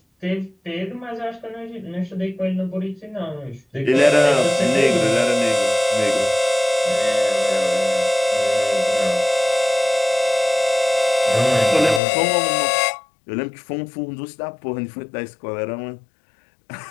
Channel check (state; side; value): drops out; right; at 12.0 s